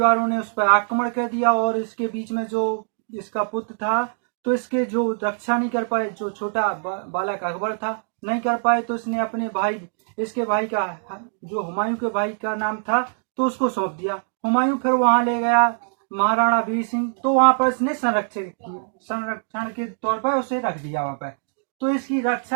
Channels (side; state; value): left; silent; digital silence